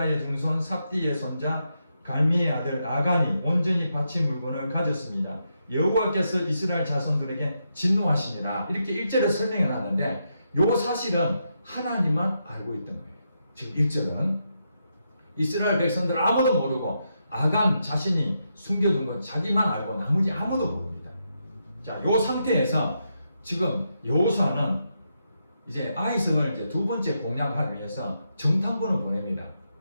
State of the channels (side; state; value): both; inverted; correlation -0.83